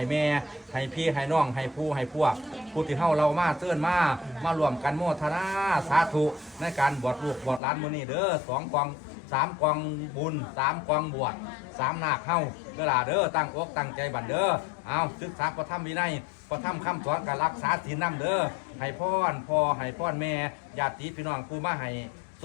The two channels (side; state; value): right; drops out; at 7.6 s